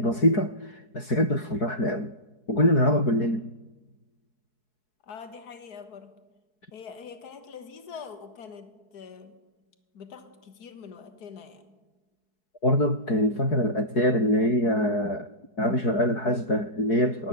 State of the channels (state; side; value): late; right; 4.7 ms